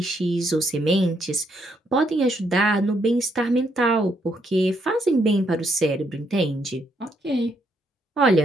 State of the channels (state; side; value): normal; both; correlation 0.75